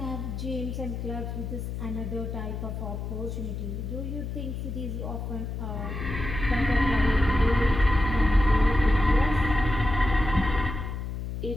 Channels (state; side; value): noise; left; hum, 5 dB below the sound